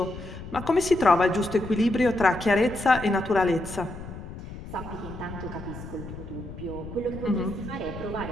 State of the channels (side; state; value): left; noise; rumble, 11 dB below the sound